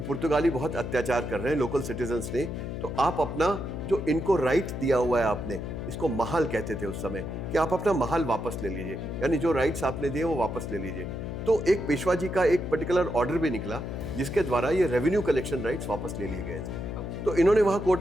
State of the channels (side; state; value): left; noise; hum, 6 dB below the sound